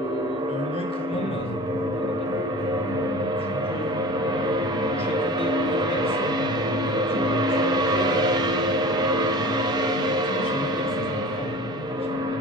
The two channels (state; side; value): normal; both; correlation 0.39